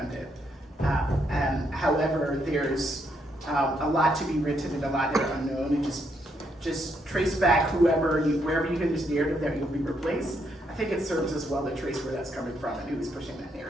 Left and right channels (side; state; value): both; normal; correlation 0.76